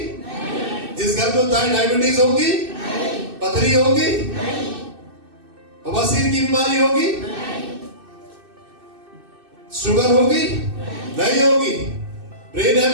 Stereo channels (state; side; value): late; left; 2.6 ms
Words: नहीं। जिस घर में उद्धार डायबिटीज होगी नहीं। पथरी होगी नहीं। बवासीर की बीमारी होगी नहीं। शुगर होगी नहीं होगी। ब्रेन